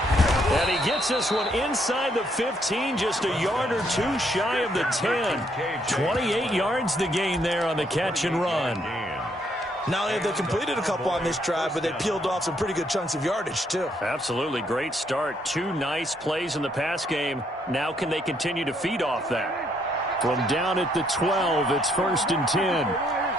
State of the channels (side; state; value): both; normal; correlation 0.71